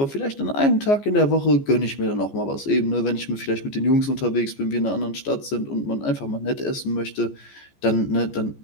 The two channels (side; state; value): right; late; 14 ms